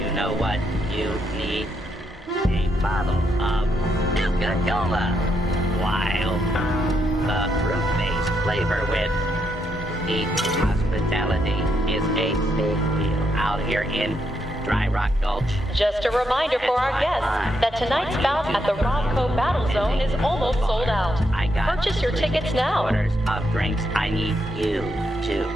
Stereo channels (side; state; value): both; normal; correlation 0.79